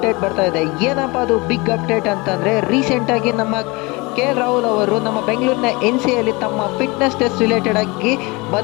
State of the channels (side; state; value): right; quieter; 25.3 dB